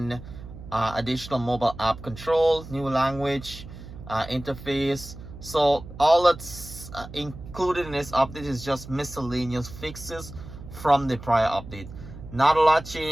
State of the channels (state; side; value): noise; right; hum, 14 dB below the sound